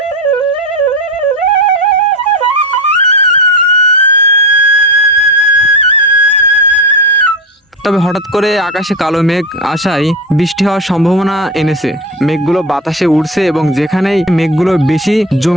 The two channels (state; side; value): normal; both; correlation 0.20